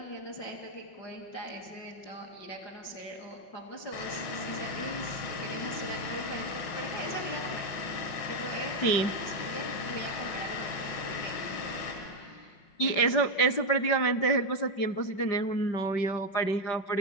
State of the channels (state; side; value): late; right; 5.5 ms